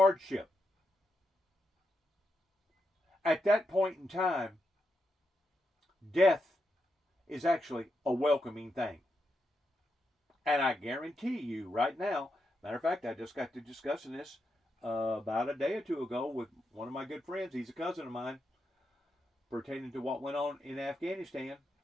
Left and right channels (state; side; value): normal; both; correlation 0.84